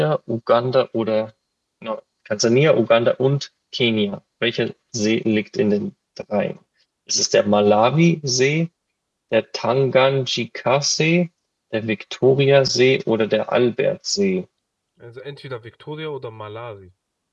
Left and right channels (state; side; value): identical; both; correlation 1.00